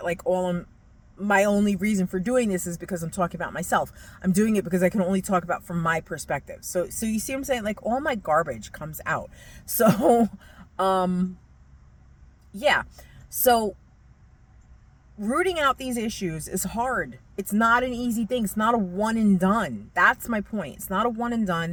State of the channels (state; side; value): identical; both; correlation 1.00